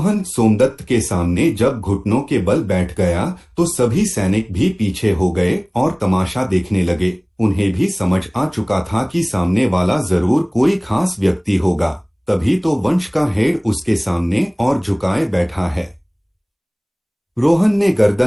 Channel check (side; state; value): both; identical; correlation 1.00